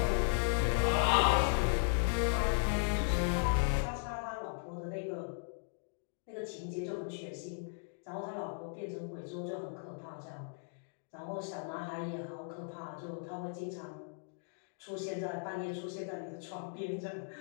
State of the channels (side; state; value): right; silent; digital silence